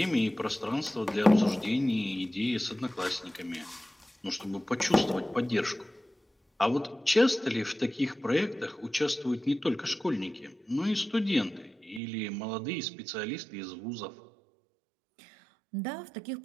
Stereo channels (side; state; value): left; drops out; at 12.0 s